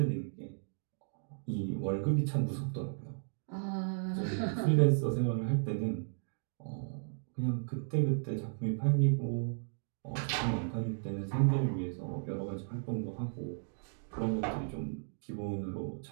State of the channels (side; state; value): left; silent; digital silence